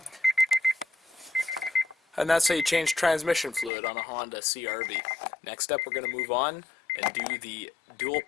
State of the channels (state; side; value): drops out; right; at 3.7 s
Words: And that's how you change transmission fluid on a Honda CRV. Next up, we're going to move on and do the dual